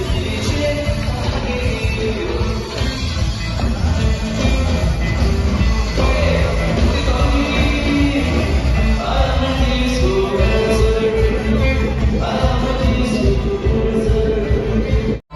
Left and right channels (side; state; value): both; identical; correlation 1.00